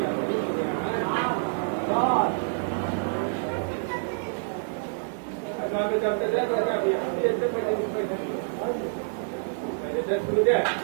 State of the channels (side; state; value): left; silent; digital silence